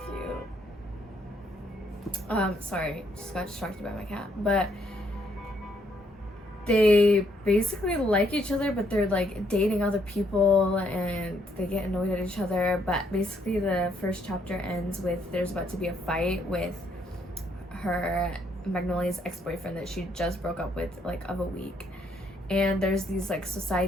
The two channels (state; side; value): normal; both; correlation 0.71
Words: cute. Sorry, just got distracted by my cat. But they basically like each other, but they're dating other people and they get annoyed at each other. But basically the first chapter ends with there's about to be a fight with her, Magnolia's ex-boyfriend that she just broke up with of a week. And there's these